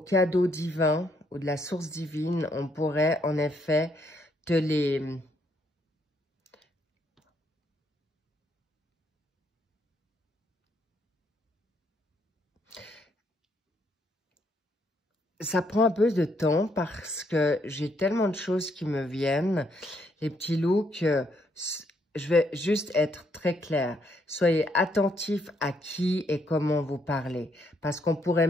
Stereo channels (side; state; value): both; normal; correlation 0.73